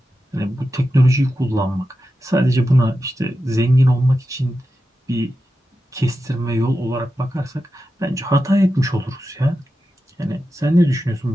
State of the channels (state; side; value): normal; both; correlation 0.91